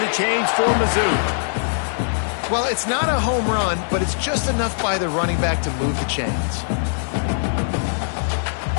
the chains for Mizzou. Well, it's not a home run, but it's just enough by the running back to move the chains.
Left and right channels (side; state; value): right; silent; 65 dB below the other